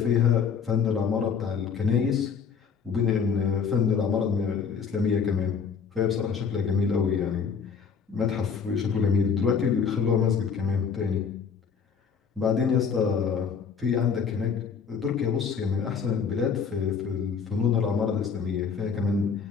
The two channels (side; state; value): right; quieter; 6.3 dB